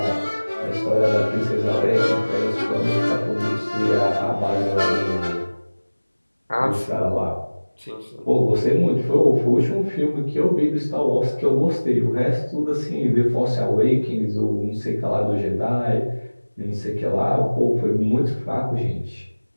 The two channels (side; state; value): both; inverted; correlation -1.00